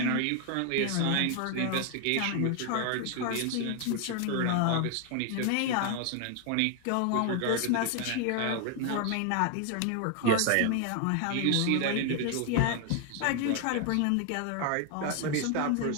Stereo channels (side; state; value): both; different; correlation 0.00